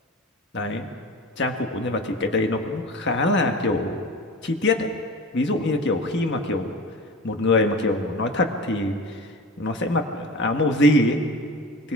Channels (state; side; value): normal; both; correlation 0.34